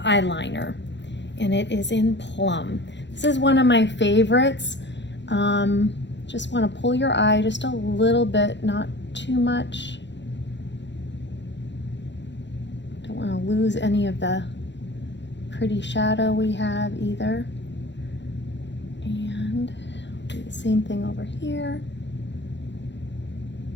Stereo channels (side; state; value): right; late; 0.52 ms